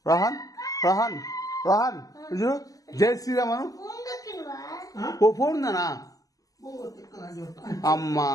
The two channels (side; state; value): right; late; 0.17 ms